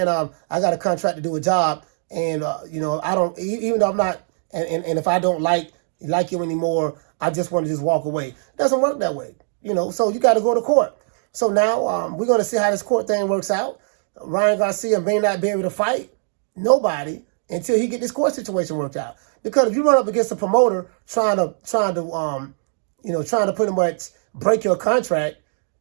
I got a contract to do a job, and I don't, even though I'm not, and if I don't like you anymore, I just want to just walk away. It doesn't work that way, so you got to go to court. So now we're going to see how this court thing works out. Ryan Garcia may not be able to fight nobody until he get this court situation worked out. Because if you run up against a promoter trying to pretty much break your contract,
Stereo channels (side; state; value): left; silent; digital silence